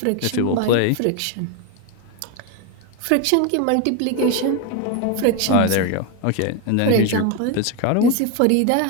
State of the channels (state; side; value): different; both; correlation 0.02